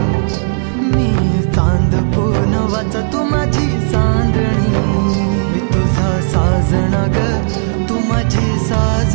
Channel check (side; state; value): left; silent; digital silence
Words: मी चांद पूनवाचा तू माझी चांदणी. मी तुझा साजण ग तू माझी